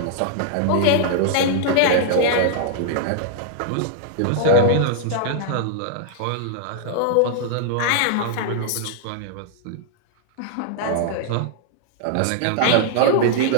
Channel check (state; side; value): different; both; correlation -0.01